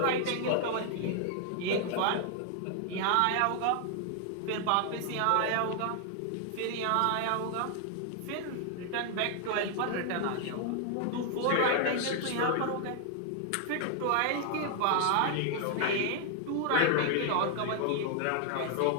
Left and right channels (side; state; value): both; different; correlation 0.00